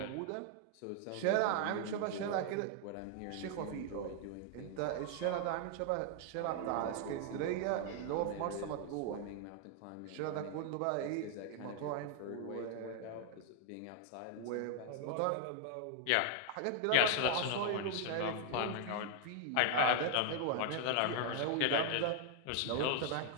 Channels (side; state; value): both; different; correlation 0.00